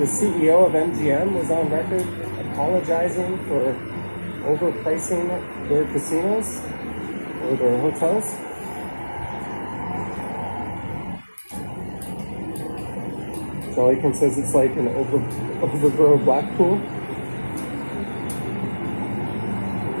CEO of MGM was on record apologizing for overpricing their casinos or their hotels. All he can says it's like an overgrown Blackpool.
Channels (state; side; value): inverted; both; correlation -1.00